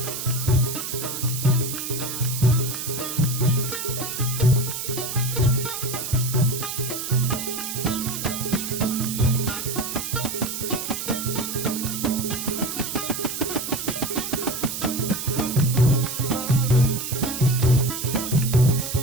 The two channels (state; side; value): noise; right; hiss, 5 dB below the sound